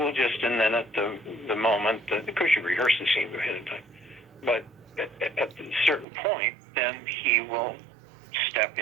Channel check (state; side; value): drops out; left; at 6.1 s